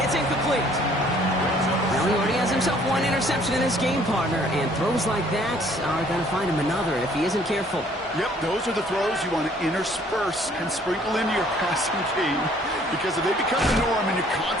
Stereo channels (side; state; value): both; normal; correlation 0.59